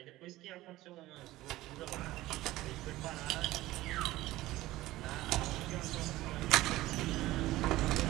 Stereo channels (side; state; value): left; quieter; 17.0 dB